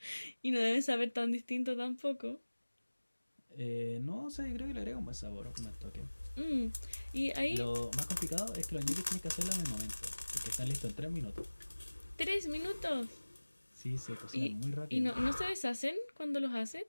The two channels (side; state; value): both; inverted; correlation -1.00